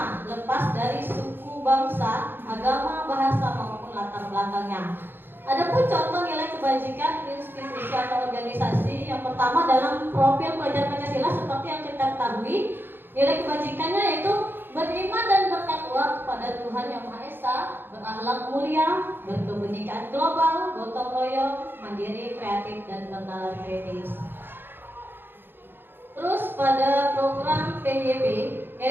lepas dari suku, bangsa, agama, bahasa maupun latar belakangnya. Adapun contoh nilai kebajikan institusi atau organisasi, yang pertama dalam profil pelajar Pancasila seperti yang kita ketahui, nilai kebajikannya yaitu beriman dan bertakwa kepada Tuhan Yang Maha Esa, berakhlak mulia, berkebenekaan global, gotong royong, mandiri, kreatif, dan bernalar kritis. Terus pada program PYB,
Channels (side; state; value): left; late; 0.10 ms